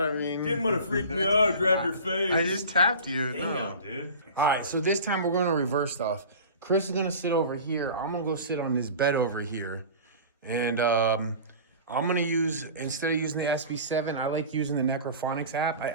I mean, Didn't want to freak me out, grab your face. I just tapped you. Damn, No. dude. All right, so this time we're going to reverse stuff. Chris is going to sit over here. I'm going to go sit on this bed over here. And I'm going to use, instead of using the SB7, I like using the Necrophonics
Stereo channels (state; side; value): inverted; both; correlation -0.37